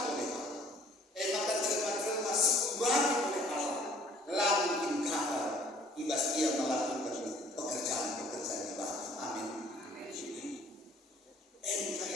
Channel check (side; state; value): both; normal; correlation 0.56